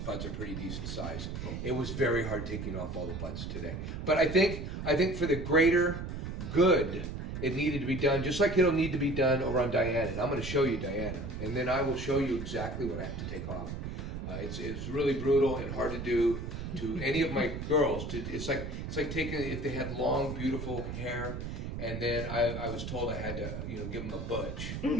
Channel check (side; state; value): right; noise; rumble, 6 dB below the sound